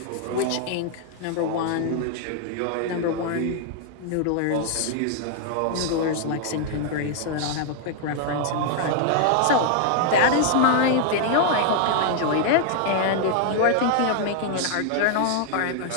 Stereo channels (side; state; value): both; different; correlation 0.00